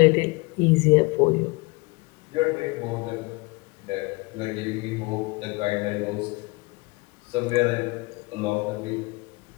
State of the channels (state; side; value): quieter; right; 26.2 dB